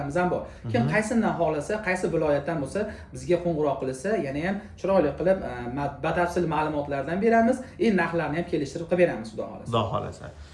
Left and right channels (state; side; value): identical; both; correlation 1.00